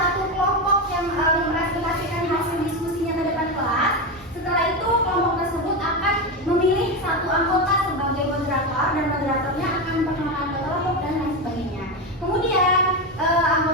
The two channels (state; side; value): normal; both; correlation 0.15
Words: kelompok yang mempresentasikan hasil diskusinya ke depan kelas. Setelah itu kelompok tersebut akan memilih satu anggota sebagai moderator dan moderatornya akan memperkenalkan kelompok dan lain sebagainya. Kemudian